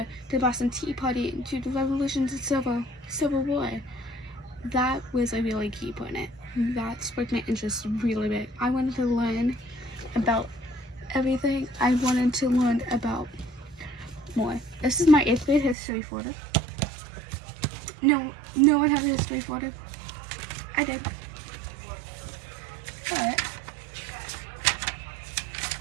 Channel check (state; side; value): drops out; left; at 15.8 s